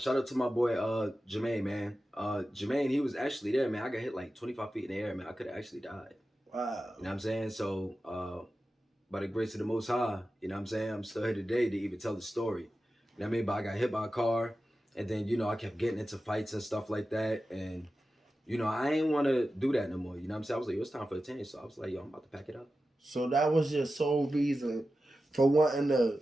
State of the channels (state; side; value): normal; both; correlation 0.93